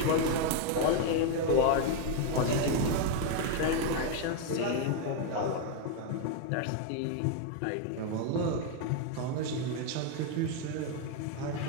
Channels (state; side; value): different; both; correlation 0.01